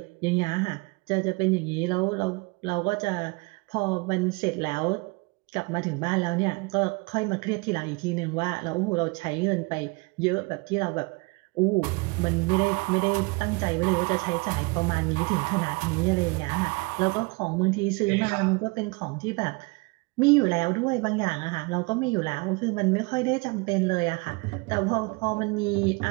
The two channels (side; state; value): left; quieter; 27.6 dB